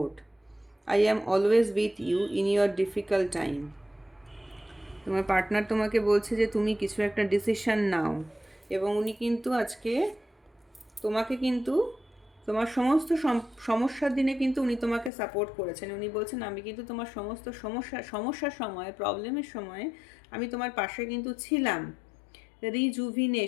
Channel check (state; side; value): drops out; right; at 15.1 s